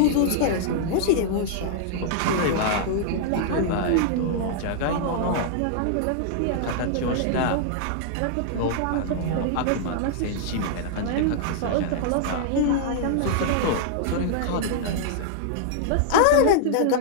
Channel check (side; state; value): both; different; correlation -0.01